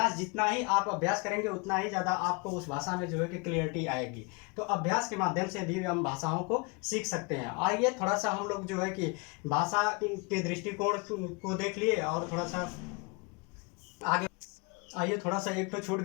जितना ही आप अभ्यास करेंगे उतना ही ज़्यादा आपको उस भाषा में जो है कि क्लियरिटी आएगी। तो अभ्यास के माध्यम से भी हम भाषाओं को सीख सकते हैं। आइए थोड़ा सा हम लोग जो है कि भाषा के दृष्टिकोण को देख लिए, और थोड़ा सा आगे आइए। थोड़ा सा एक तो छूट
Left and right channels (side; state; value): right; quieter; 30.8 dB